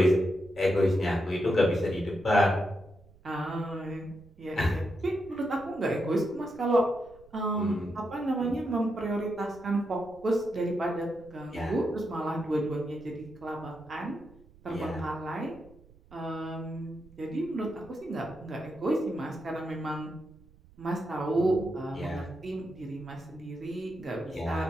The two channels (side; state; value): right; noise; rumble, 25 dB below the sound